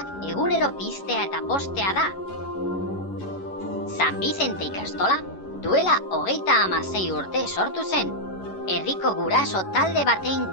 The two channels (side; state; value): right; late; 11 ms